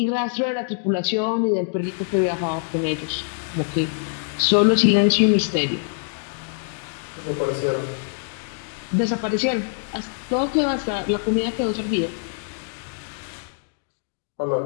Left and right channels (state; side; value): silent; right; 63 dB below the other